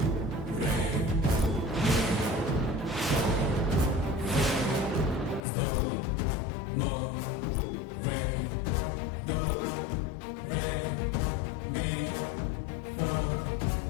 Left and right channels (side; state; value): right; drops out; at 5.5 s